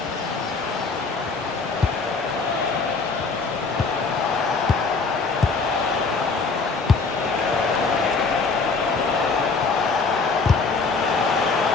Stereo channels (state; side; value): quieter; right; 4.3 dB